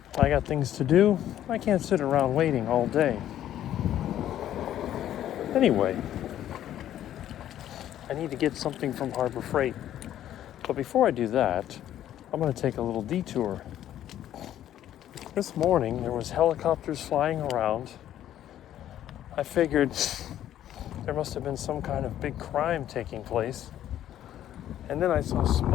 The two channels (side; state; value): right; quieter; 11.7 dB